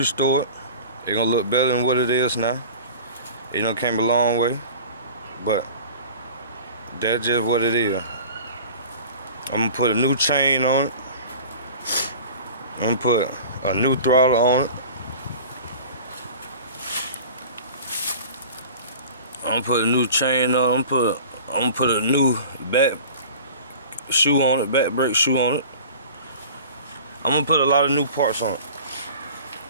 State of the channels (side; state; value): both; inverted; correlation -0.40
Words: it. It's gonna look better than what it is now. It done came a long way, but that's just what it is. I'm gonna put a new chain on it. I'm gonna put a new throttle on it. I'm gonna put a new chain on it. I'm gonna put a new back shoe on it, back brake shoe on it. I'm gonna put a lot of new parts on it.